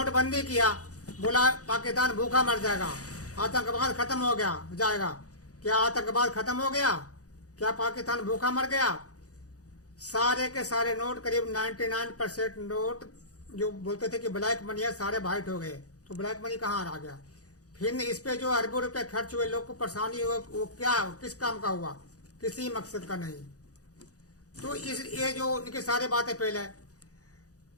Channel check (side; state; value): right; late; 0.67 ms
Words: किया, बोला पाकिस्तान भूखा मर जाएगा, आतंकवाद खत्म हो गया जाएगा। क्या आतंकवाद खत्म हो गया? क्या पाकिस्तान भूखा मर गया? सारे के सारे नोट, करीब 99% नोट जो बोलते थे कि ब्लैक मनी है, सारे वाइट हो गए। तो ब्लैक मनी कहाँ आ गया? फिर इस पे जो अरबों रुपए खर्च हुए, लोग को परेशानी हुई, वो क्या, किस काम का हुआ? किसी मकसद का नहीं। तो ये जो इनकी सारी बातें पहले,